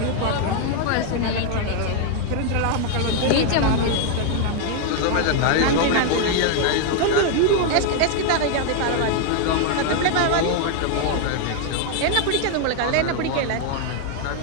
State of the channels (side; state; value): both; different; correlation 0.00